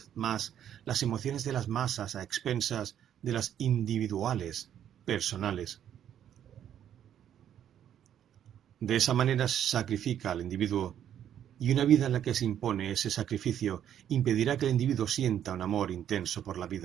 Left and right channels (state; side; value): quieter; left; 10.0 dB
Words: más las emociones de las masas a expensas de las individuales, personales. De esa manera se sacrifica al individuo, y una vida en la que se impone ese sacrificio impedirá que el individuo sienta un amor intenso por la